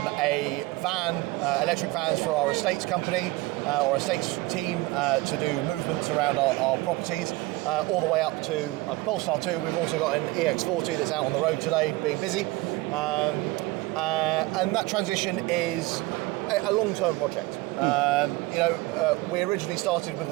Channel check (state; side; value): quieter; left; 20.5 dB